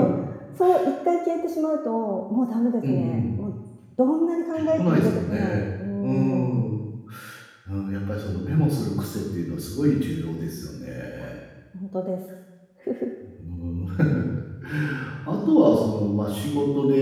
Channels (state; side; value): identical; both; correlation 1.00